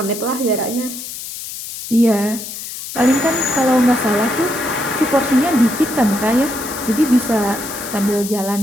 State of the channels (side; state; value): left; noise; hiss, 9 dB below the sound